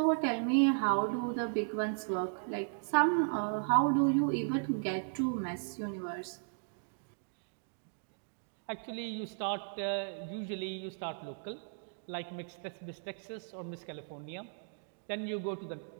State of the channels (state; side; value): silent; left; digital silence